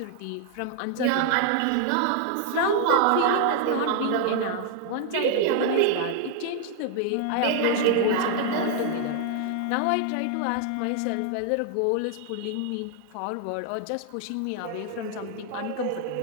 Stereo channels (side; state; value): both; different; correlation 0.00